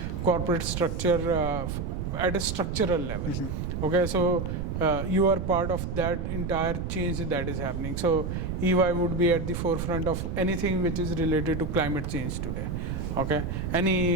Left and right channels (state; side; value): noise; right; rumble, 3 dB below the sound